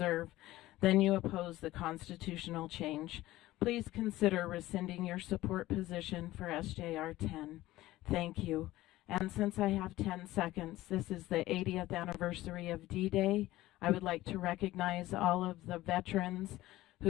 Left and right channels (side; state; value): right; quieter; 16.7 dB